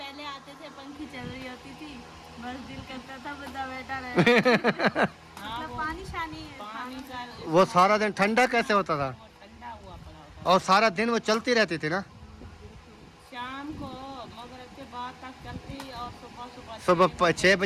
आते थे पंखी चल रही होती थी, बस दिल करता था बंदा बैठा रहे। मतलब पानी शानी है, पानी का वो सारा दिन ठंडा कैसे होता था, ठंडा हुआ पड़ा होता। और सारा दिन वो चलती रहती थी ना, शाम को मगरिब के बाद तक चलती और सुबह 6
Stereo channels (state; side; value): identical; both; correlation 1.00